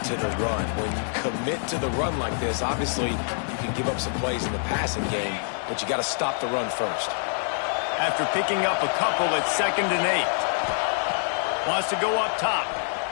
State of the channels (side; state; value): right; silent; digital silence